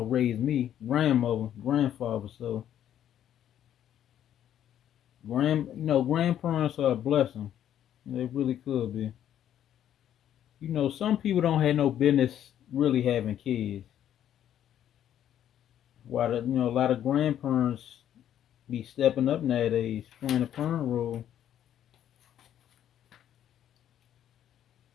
raised me, grandmother, grandfather. So, you know, grandparents are a blessing. They really could be. You know, some people don't have no business really having kids. While you know, a lot of grandparents be stepping up nowadays, playing a parent role.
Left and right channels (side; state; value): right; quieter; 10.6 dB